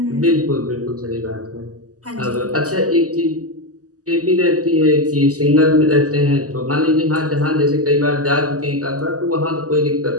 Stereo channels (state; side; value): late; left; 0.67 ms